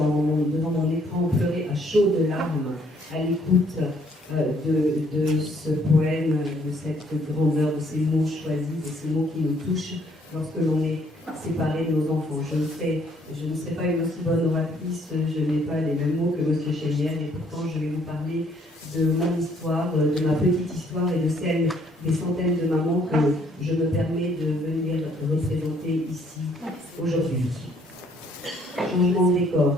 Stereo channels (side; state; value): both; normal; correlation 0.65